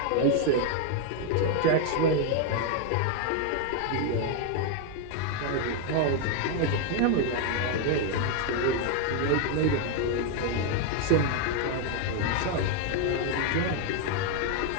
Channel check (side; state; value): both; different; correlation 0.01